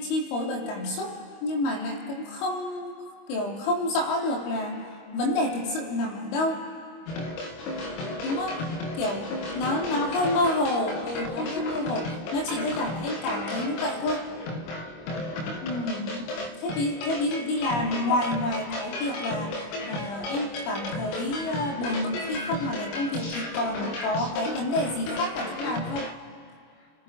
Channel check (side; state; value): right; late; 25 ms